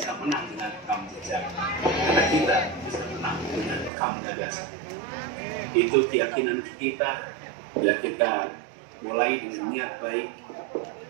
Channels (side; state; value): left; drops out; at 3.9 s